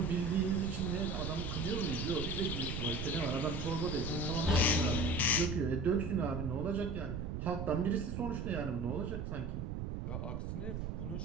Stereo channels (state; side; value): noise; right; rumble, 3 dB below the sound